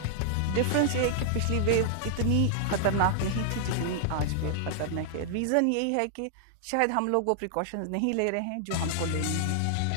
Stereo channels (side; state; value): both; different; correlation -0.01